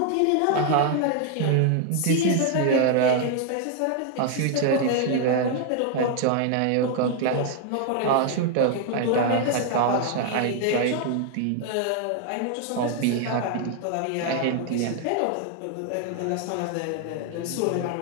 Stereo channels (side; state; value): both; different; correlation 0.00